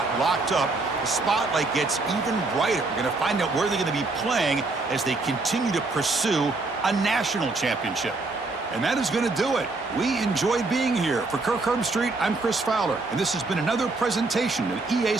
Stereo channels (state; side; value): quieter; left; 3.4 dB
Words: locked up, the spotlight gets even brighter. We're going to find out where they're going to be playing as they continue to pursue a national championship. And that is going to do it. We enjoyed being here. For Kirk Herbstreit, I'm Chris Fowler, and this has been another presentation of EA